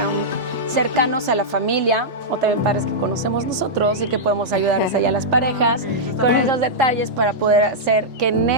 cercanos a la familia o también padres que conocemos nosotros y que podemos ayudarles allá a las parejas con esos detalles para poder hacer que en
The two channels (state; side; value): normal; both; correlation -0.09